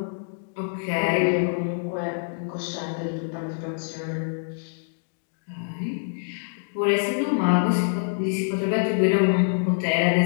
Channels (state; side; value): silent; right; digital silence